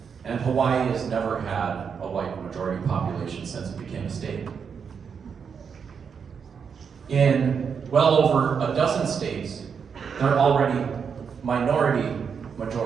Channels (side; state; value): left; quieter; 6.5 dB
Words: and Hawaii has never had a white majority population since it became a state. In well over a dozen states, they're already minority